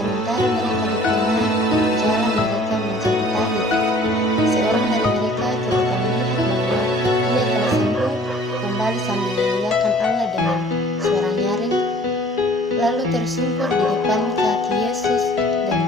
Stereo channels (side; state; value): both; normal; correlation 0.53